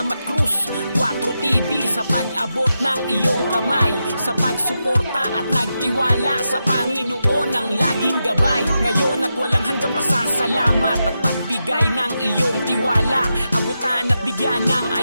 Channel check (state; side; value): inverted; both; correlation -0.88